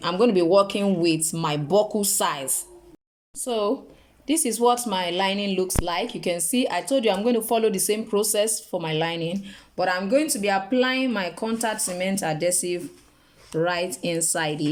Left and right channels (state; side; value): identical; both; correlation 1.00